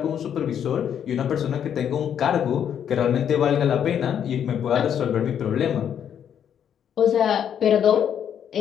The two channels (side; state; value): right; quieter; 8.9 dB